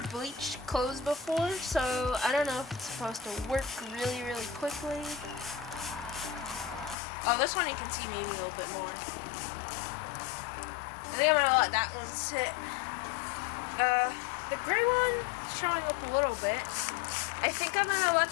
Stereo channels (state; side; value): drops out; right; at 7.0 s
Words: bleached clothes before, so I don't know if it's supposed to work really, really quickly. Oh, this one you can see maybe a little bit more. I think I'm going to let that one sit. The gray one showing up a little bit. I think I'm going to let